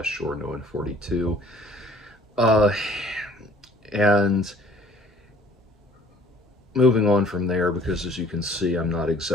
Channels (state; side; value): normal; both; correlation 0.55